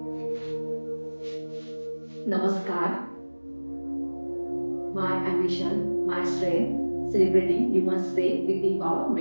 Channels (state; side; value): inverted; both; correlation -1.00